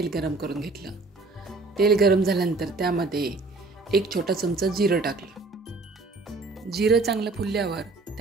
गरम करून घेतलं। तेल गरम झाल्यानंतर त्यामध्ये 1 छोटा चमचा जिरं टाकलं। जिरं चांगलं फुलल्यावर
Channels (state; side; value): quieter; left; 3.5 dB